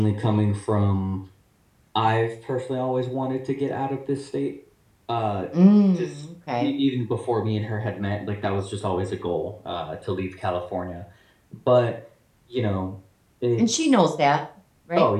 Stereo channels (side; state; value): both; identical; correlation 1.00